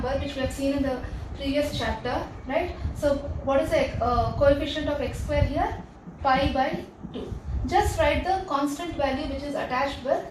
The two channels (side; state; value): both; identical; correlation 1.00